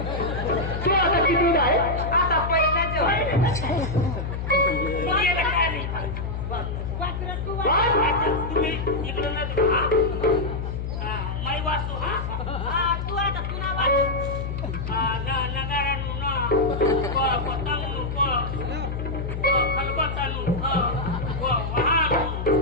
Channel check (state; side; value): noise; left; hum, 4 dB below the sound